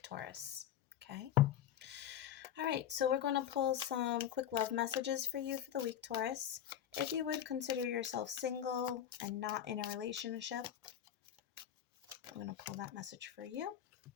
Taurus. Okay. All right, so we're going to pull some quick love messages for you for the week, Taurus. If you would consider yourself single and not in a relationship, I'm going to pull that message for you.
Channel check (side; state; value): right; quieter; 10.2 dB